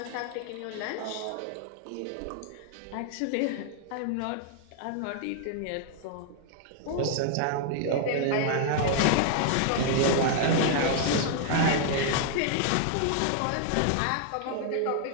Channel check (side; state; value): both; different; correlation 0.00